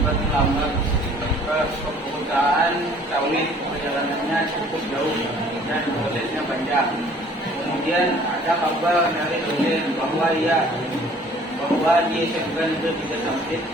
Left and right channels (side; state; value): both; normal; correlation 0.54